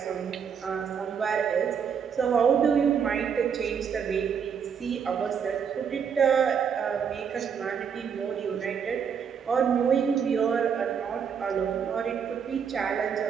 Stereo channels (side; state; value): left; quieter; 7.1 dB